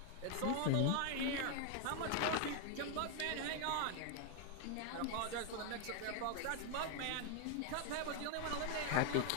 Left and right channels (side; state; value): both; different; correlation 0.01